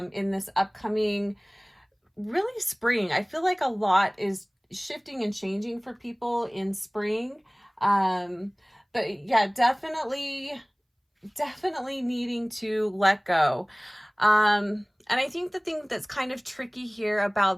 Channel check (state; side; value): identical; both; correlation 1.00